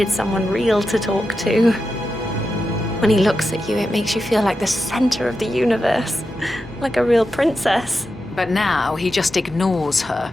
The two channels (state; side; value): normal; both; correlation 0.89